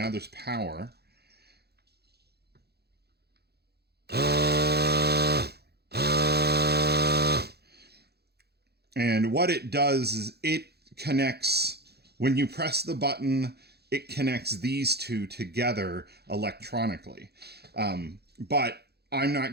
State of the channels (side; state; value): left; late; 0.47 ms